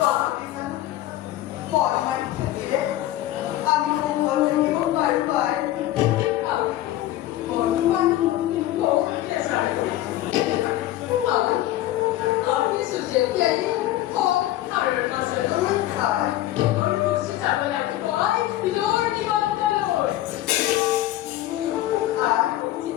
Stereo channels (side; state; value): right; quieter; 14.5 dB